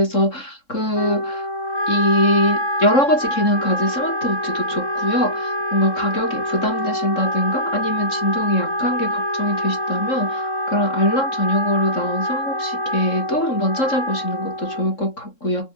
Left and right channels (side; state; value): right; late; 3.7 ms